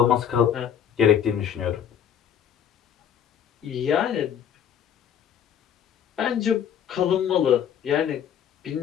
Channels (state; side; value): quieter; right; 9.0 dB